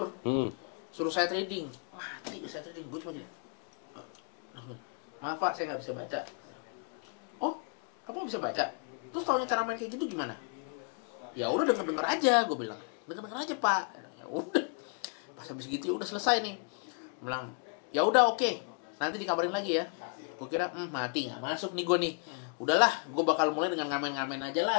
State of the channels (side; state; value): right; quieter; 39.6 dB